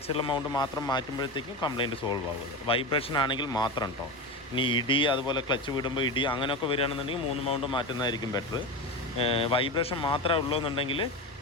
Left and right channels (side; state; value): both; normal; correlation 0.21